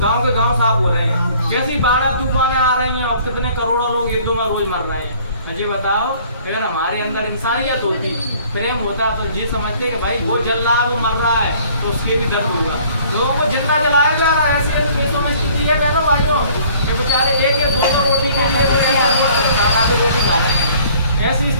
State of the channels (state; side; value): inverted; both; correlation -0.55